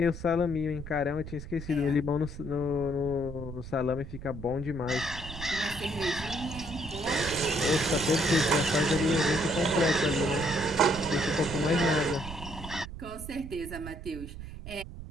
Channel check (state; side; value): noise; right; rumble, 11 dB below the sound